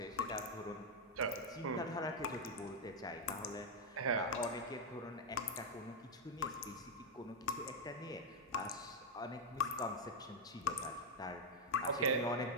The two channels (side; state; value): both; normal; correlation 0.02